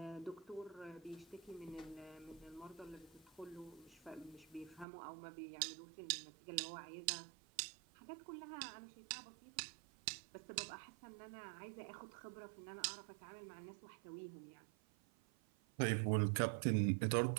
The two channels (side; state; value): left; drops out; at 4.9 s